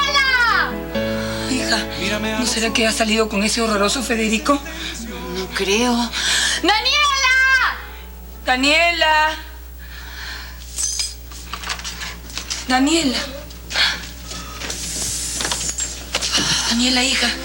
Hija, ¿no será que ha salido con ese horroroso Federico? No creo. ¡Daniela! ¡Daniela! Daniela. Daniela, hija,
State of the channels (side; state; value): both; identical; correlation 1.00